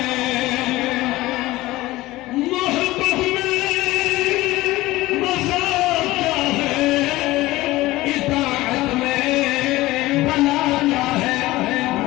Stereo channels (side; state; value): right; quieter; 18.3 dB